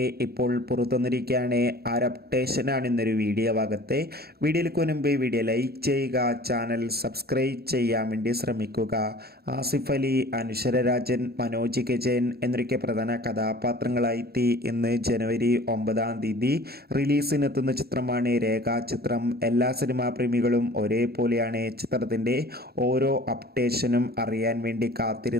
ഇപ്പോൾ പുറത്തുവന്നിരിക്കുകയാണ്. ആ ഒരു അപ്ഡേഷനാണ് ഇന്നൊരു വീഡിയോ ഭാഗത്ത്. വീഡിയോയിലേക്ക് മുൻപ് വീഡിയോ ലൈക്ക് ചെയ്യുക, ചാനൽ സബ്സ്ക്രൈബ് ചെയ്യാൻ വേണ്ടി ശ്രമിക്കുക. ആസിഫ് അലി, അനശ്വര രാജൻ, മനോജ് കെ ജയൻ എന്നൊക്കെ പ്രധാന കഥാപാത്രങ്ങളായി ഇന്ന് ജനുവരി 9 റിലീസിനെത്തുന്ന ചിത്രമാണ് രേഖാചിത്രം. എല്ലാ സിനിമാ പ്രേമികളും ഒരേപോലെയാണ് ചിത്രത്തിൻ്റെ ഓരോ അപ്ഡേഷനും അറിയാൻ വേണ്ടി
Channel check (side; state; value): left; late; 0.46 ms